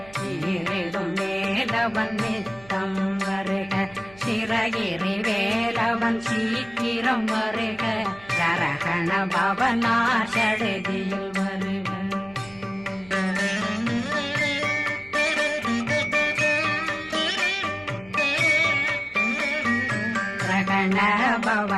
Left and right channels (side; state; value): right; noise; hum, 23 dB below the sound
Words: ஈரிடும் வேலவன் நித்தம் வருக சிறகிரி வேலவன் சீக்கிரம் வருக ஜரகண பவனா சடுதியில் வருக ரகண